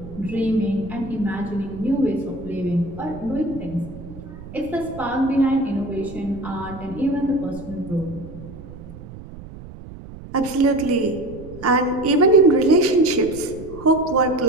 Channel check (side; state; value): right; noise; rumble, 15 dB below the sound